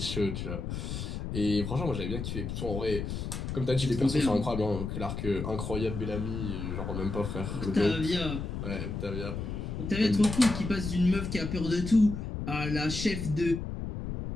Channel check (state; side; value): noise; left; rumble, 5 dB below the sound